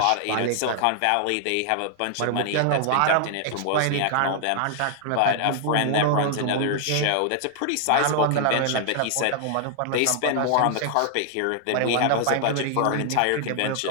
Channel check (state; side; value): different; both; correlation 0.00